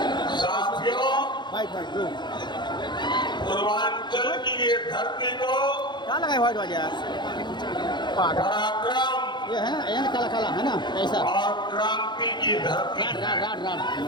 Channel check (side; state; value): right; late; 0.21 ms